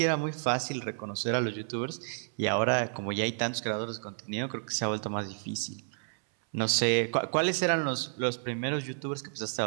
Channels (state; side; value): silent; left; 57 dB below the other